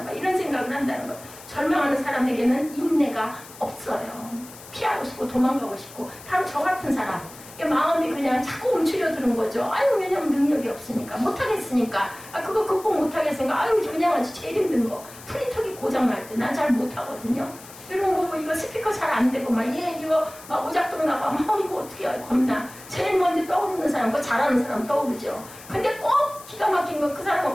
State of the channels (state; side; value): noise; left; hiss, 18 dB below the sound